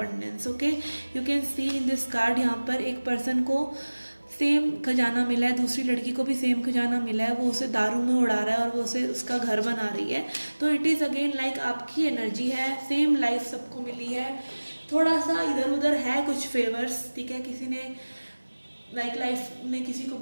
Okay, you can see in this card, यहाँ पर एक person को same खजाना मिला है, दूसरी लड़की को भी सेम खजाना मिला है, वो उसे दारू में उड़ा रहा है और वो उसे उसका घर बना रही है। तो इट इज़ अगेन लाइक आपकी एनर्जी है, सेम लाइफ सबको मिली है, थोड़ा सा इधर उधर है कुछ फेवर्स, ठीक है, किसी ने लाइफ ने किसी को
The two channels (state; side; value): inverted; both; correlation -1.00